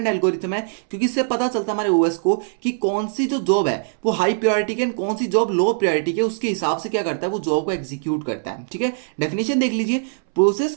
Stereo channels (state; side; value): silent; left; 63 dB below the other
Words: एल्गोरिथम है, क्योंकि इससे पता चलता है हमारे ओएस को कि कौन सी जो जॉब है वो हाई प्रायोरिटी की कौन सी जॉब लो प्रायोरिटी की, उसके हिसाब से क्या करता है वो जॉब को एग्जीक्यूट करता है। ठीक है, डेफिनेशन देख लीजिए, process